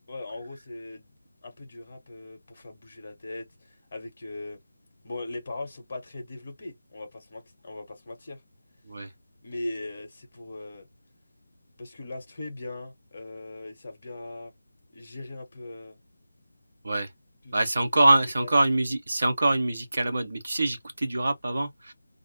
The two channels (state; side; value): inverted; both; correlation -0.95